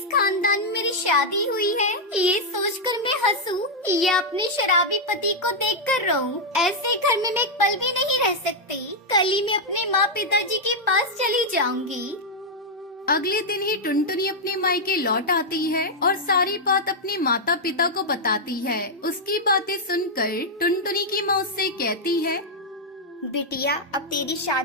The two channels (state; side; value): normal; both; correlation -0.03